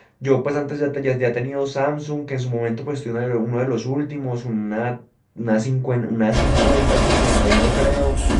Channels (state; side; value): identical; both; correlation 1.00